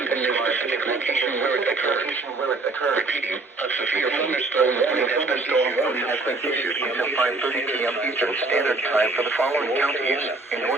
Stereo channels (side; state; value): left; quieter; 3.3 dB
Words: and the specific location where it occurred. occur. Repeating, a severe thunderstorm warning has been issued Until 5:30 p.m. Eastern Standard Time for the following counties in